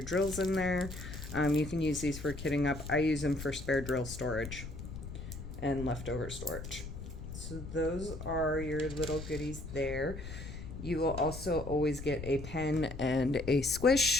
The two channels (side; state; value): left; noise; rumble, 9 dB below the sound